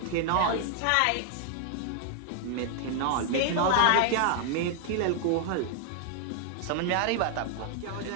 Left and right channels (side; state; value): both; different; correlation 0.00